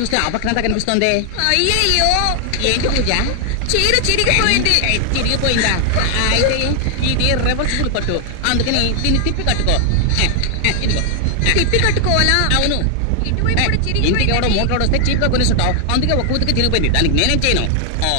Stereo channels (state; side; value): different; both; correlation 0.00